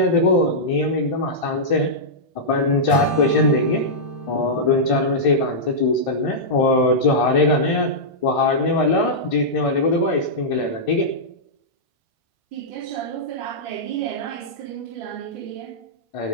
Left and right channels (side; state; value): right; late; 1.5 ms